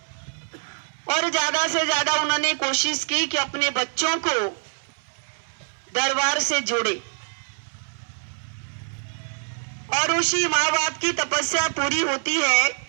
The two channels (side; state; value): left; silent; 62 dB below the other